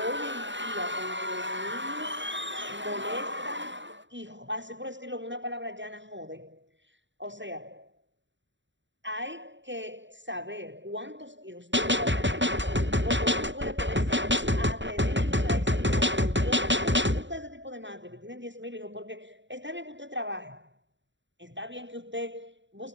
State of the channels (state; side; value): late; left; 0.54 ms